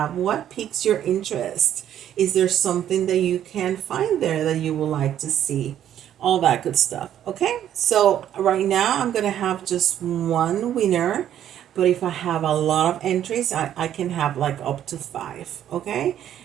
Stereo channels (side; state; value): left; quieter; 10.7 dB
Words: What piques your interest? Is there something that you can find there that you would like to see? All that good stuff. Okay, so right now I'm gonna have just one winner, but if I have a lot of entries, I can have like up to 5. Okay,